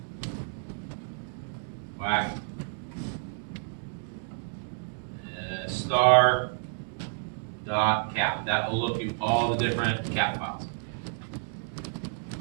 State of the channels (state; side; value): silent; left; digital silence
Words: whack star dot cap. That will look at all the different cap files.